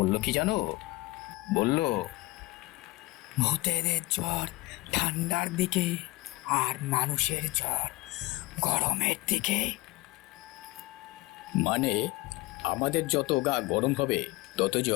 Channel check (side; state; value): right; quieter; 21.0 dB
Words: কি জানো? বলল, ভূতেদের জ্বর ঠান্ডার দিকে, আর মানুষের জ্বর গরমের দিকে। মানে আমাদের যত গা গরম হবে তত